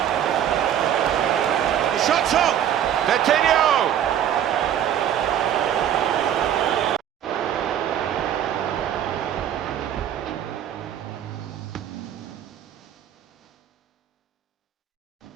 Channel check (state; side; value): quieter; left; 10.2 dB